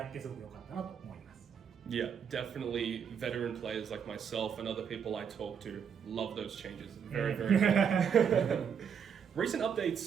ってすごく良かったなと思います。Yeah, definitely veteran players like myself and other people I talk to love those changes. Very, very good. Recent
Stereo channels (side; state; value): left; quieter; 7.4 dB